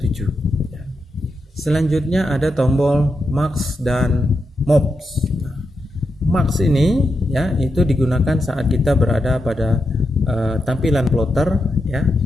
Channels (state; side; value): normal; both; correlation 0.86